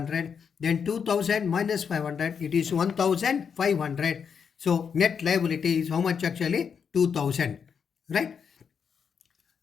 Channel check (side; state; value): right; quieter; 6.7 dB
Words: then 2,000 minus 500, it is 1,500. So net liability is how much actually? 2,000, right?